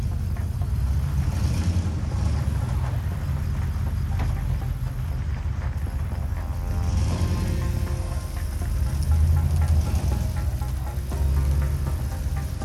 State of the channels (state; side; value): identical; both; correlation 1.00